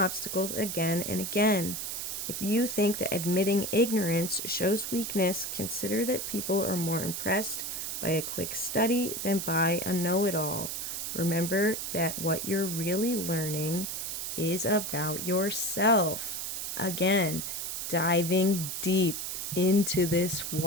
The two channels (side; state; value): right; noise; hiss, 4 dB below the sound